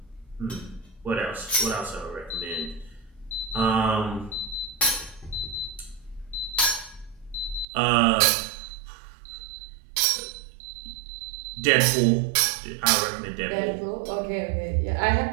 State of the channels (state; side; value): drops out; left; at 7.7 s